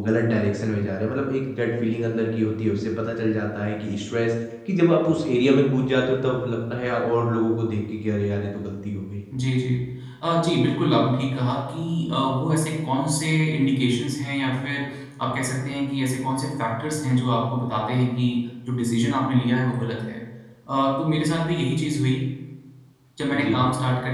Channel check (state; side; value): identical; both; correlation 1.00